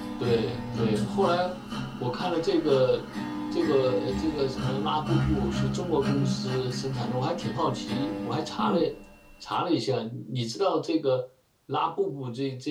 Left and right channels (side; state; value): both; identical; correlation 1.00